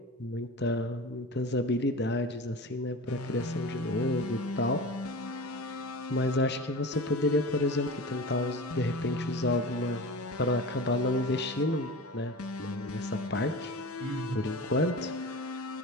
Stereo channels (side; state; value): both; normal; correlation 0.33